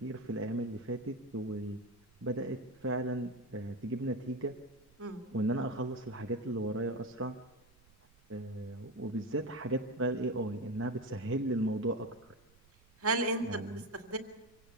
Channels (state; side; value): noise; right; rumble, 28 dB below the sound